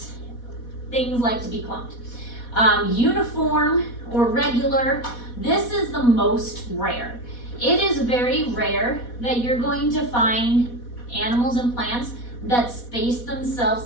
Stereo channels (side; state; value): right; late; 4.1 ms